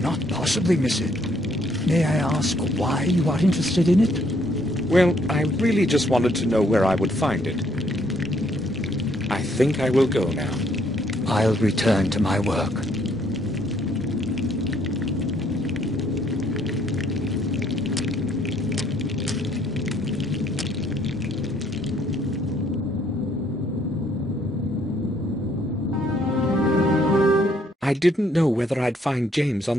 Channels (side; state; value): both; normal; correlation 0.68